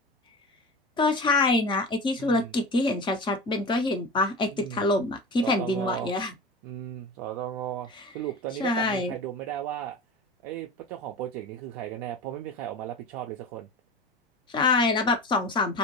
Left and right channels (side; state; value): both; normal; correlation 0.31